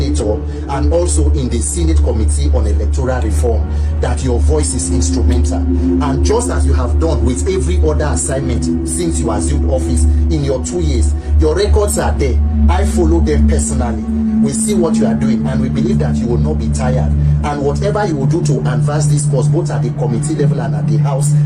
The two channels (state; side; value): identical; both; correlation 1.00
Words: and also in the Senate Committee on Electoral Reform, that your voice is instrumental. And just as you have done with every other assignment since you assumed office in your 2 years, your records are there. I follow them personally. We see what you are doing, and we believe that you will not be tired. And whatever you will do to advance this cause, both at the committee level and at the House,